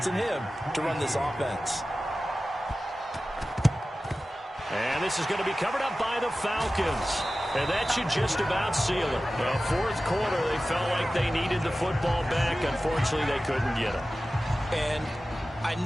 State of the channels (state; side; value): normal; both; correlation 0.95